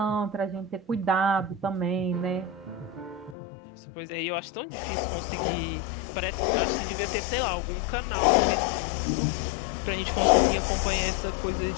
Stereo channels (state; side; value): drops out; right; at 3.4 s